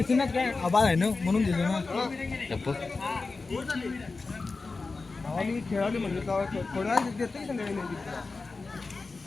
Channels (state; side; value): quieter; right; 3.9 dB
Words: काय आबाळ आहे ना म्हणून दिले ना खेळाडू म्हणजे थोड्या देते